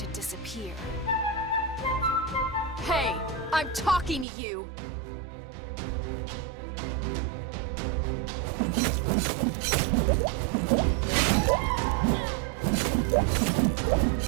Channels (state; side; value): drops out; left; at 4.2 s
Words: disappear? Hey, I'm talking to you!